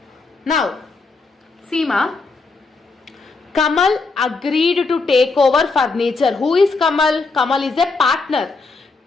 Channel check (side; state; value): right; quieter; 4.0 dB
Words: Now, Seema, Kamal agreed to take over furniture. Who is Kamal? Kamal is a partner.